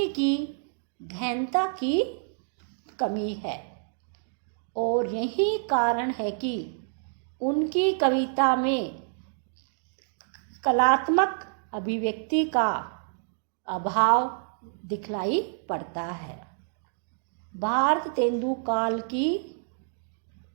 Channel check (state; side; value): silent; left; digital silence